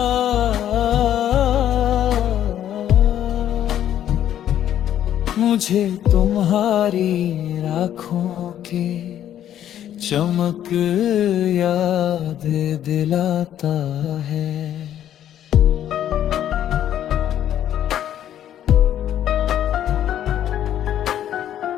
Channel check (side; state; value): right; quieter; 10.9 dB